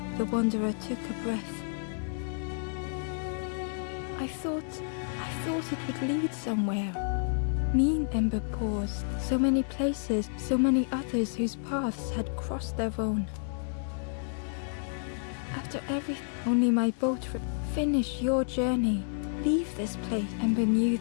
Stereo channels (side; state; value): right; silent; 56 dB below the other